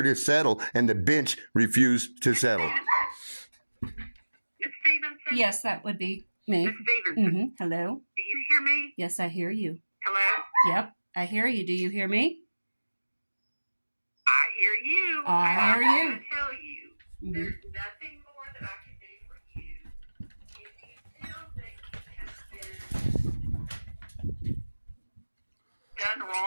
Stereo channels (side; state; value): both; inverted; correlation -1.00